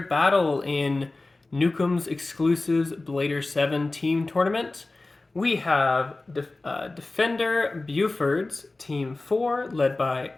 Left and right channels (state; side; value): quieter; right; 3.2 dB